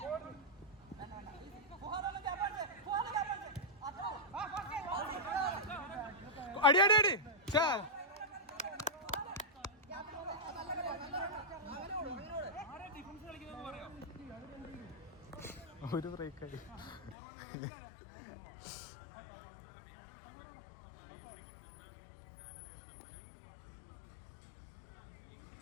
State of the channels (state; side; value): drops out; right; at 17.2 s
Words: അടി അടി അടി ചാ ഒരു ബ്രേക്കായി.